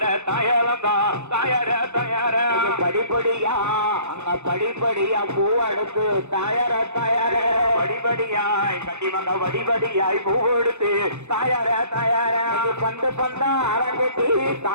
தாயலந்தோம் தாயர தயார படிப்படியா அங்க படிப்படியா பூ எடுத்து தாயர தயார படிப்படியாய் கண்டிப்பாக படிப்படியாய் பூ எடுத்து தாயர தயார பந்து பந்தா அரங்கட்டி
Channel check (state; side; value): late; left; 0.82 ms